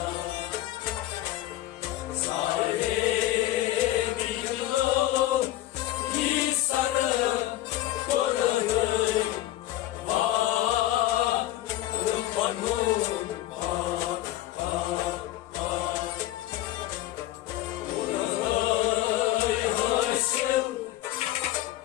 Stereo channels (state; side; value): quieter; right; 14.8 dB